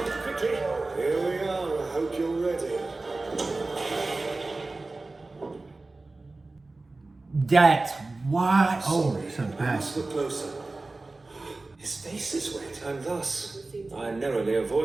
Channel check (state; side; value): quieter; left; 3.3 dB